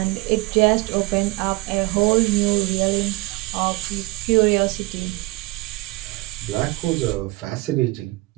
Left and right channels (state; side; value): quieter; left; 22.1 dB